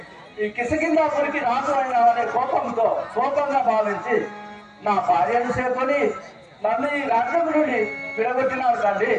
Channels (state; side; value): identical; both; correlation 1.00